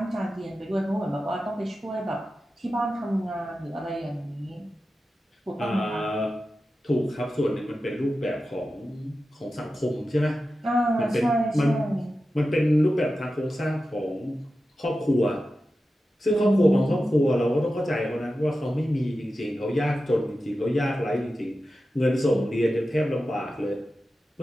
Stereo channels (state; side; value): normal; both; correlation 0.92